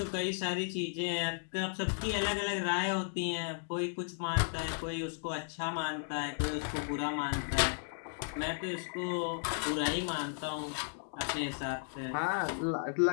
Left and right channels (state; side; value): silent; right; digital silence